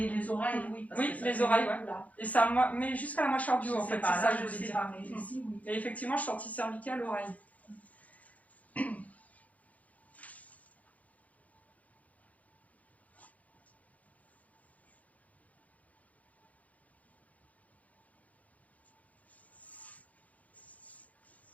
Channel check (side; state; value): right; late; 0.072 ms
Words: les oreilles, oui. Parce oui, que les oreilles, ouais. Et ça mais jusqu'à la mâchoire du haut, en fait. C'est ça que je voulais dire. Pas, mais ici, oui. Et effectivement, je sentis cervical, l'oreille.